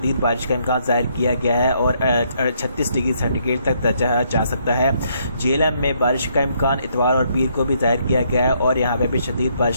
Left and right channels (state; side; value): inverted; both; correlation -0.71